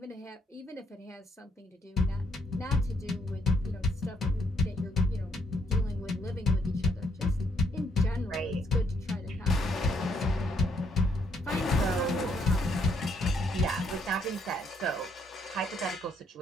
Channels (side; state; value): both; normal; correlation 0.72